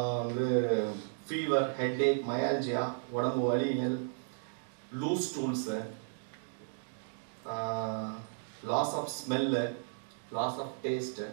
வந்து ஃபீவர், ஹெட்ஏக், மயால்ஜியா, உடம்பு வலிகள், loose stools, loss of smell, loss of taste.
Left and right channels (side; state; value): left; silent; digital silence